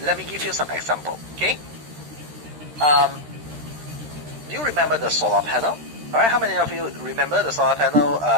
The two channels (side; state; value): left; late; 13 ms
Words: Let me give you some example. Okay, do you remember the solar panel? All right, how many of you remember the solar panel